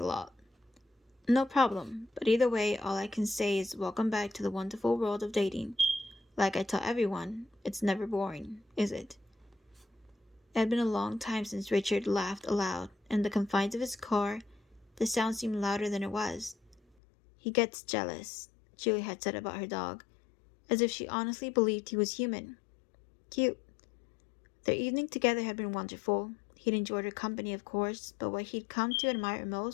lot. No problem, but either way, all I can say is welcome back to the wonderful world of dating. Like I tell everyone, it's never boring, is it? It had been a long time since Richard laughed aloud, and in the confines of his car, the sound seemed louder than it was. He gets jealous, Julie had said about her dog, as if she honestly believed he was human. Cute. Their evening together had been wonderful. He'd enjoyed her company, of course, but what he'd come to admire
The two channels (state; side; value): drops out; right; at 16.8 s